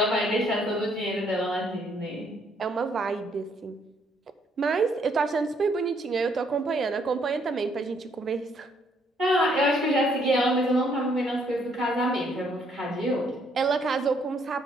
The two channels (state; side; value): normal; both; correlation 0.68